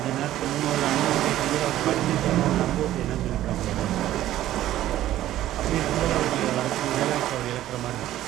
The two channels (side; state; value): left; quieter; 13.5 dB